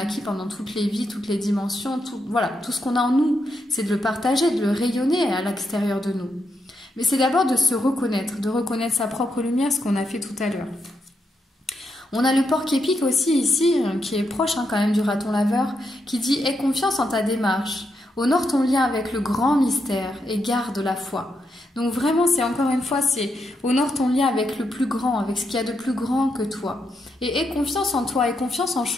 pendant toutes les vies, toutes les dimensions, voilà, tout ce qu'on a en nous, c'est de le partager, de le rayonner à l'extérieur de nous. Mais c'est d'abord de se reconnaître, de reconnaître sa propre lumière, ce qu'on a fait tout à l'heure. On a le porc-épic aussi ici, qui est proche quand même du raton laveur, qui dit « Aie confiance en ta démarche, honore ton lien avec le grand mystère et garde la foi ». Donc vraiment, c'est encore une fois, c'est honore ton lien avec le plus grand, avec ce qu'il y a de plus grand que toi. Et aie confiance en toi, aie confiance en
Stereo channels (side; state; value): both; normal; correlation 0.82